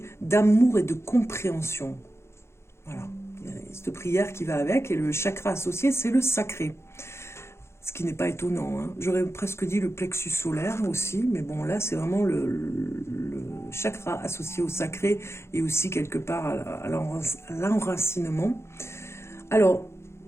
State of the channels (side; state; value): right; late; 0.13 ms